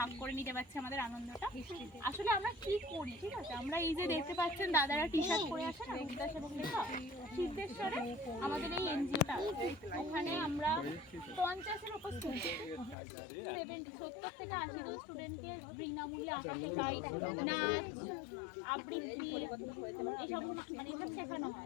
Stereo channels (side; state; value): right; drops out; at 13.0 s